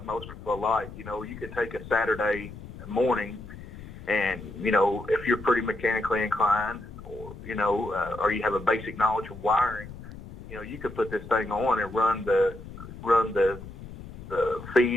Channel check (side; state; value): left; noise; rumble, 14 dB below the sound